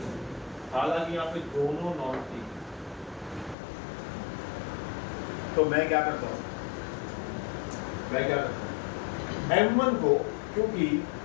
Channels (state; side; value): drops out; right; at 3.6 s